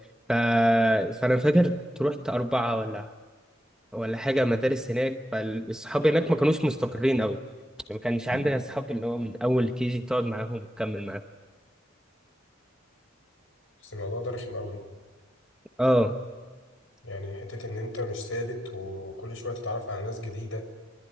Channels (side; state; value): both; normal; correlation 0.89